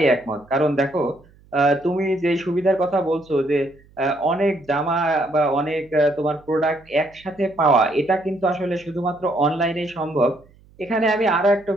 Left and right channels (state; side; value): noise; right; hum, 28 dB below the sound